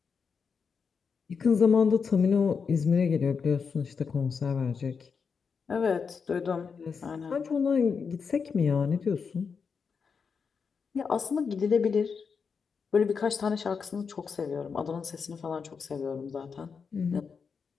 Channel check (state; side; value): quieter; right; 5.8 dB